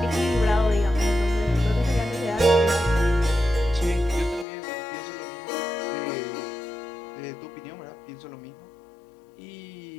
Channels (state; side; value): drops out; right; at 4.5 s